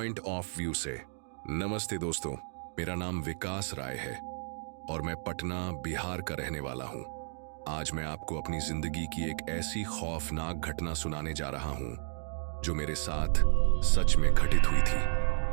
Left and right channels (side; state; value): left; silent; digital silence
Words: ऑफ व्यू से। नमस्ते दोस्तों, मेरा नाम विकास राय है और मैं पटना बिहार का रहने वाला हूं। आज मैं आपको अपनी जिंदगी की एक ऐसी खौफनाक घटना सुनाने जा रहा हूं जो मेरे साथ सच में घटित हुई थी।